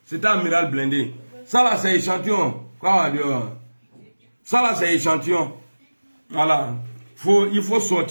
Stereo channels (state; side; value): inverted; both; correlation -1.00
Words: C'est un amiral blindé. Ça là, c'est échantillon. Quoi, Dieu? Ça là, c'est échantillon. Voilà. Il faut